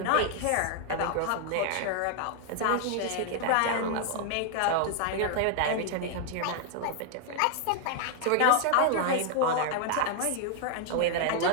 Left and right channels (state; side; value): different; both; correlation 0.00